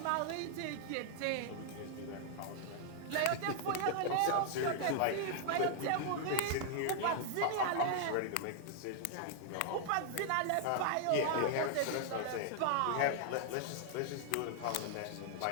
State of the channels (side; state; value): both; different; correlation -0.01